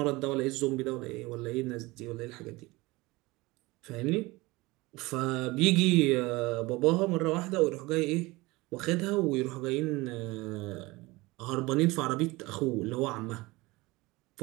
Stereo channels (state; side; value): quieter; left; 21.9 dB